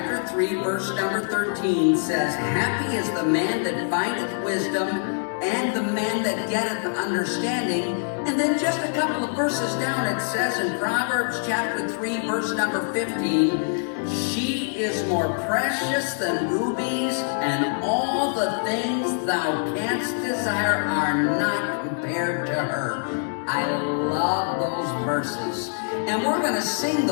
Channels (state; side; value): silent; right; digital silence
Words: 3, verse number 13 says, "Happy is the man that findeth wisdom, and the man that getteth understanding." And then just a couple of verses down it says in Proverbs chapter 3, verse number 15, "She is more precious than rubies, and all the things thou canst desire are not compared to her." I love those verses. And we're going to sing